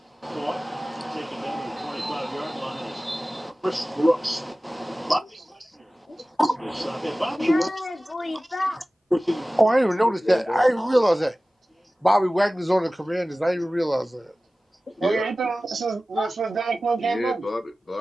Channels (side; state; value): both; normal; correlation 0.97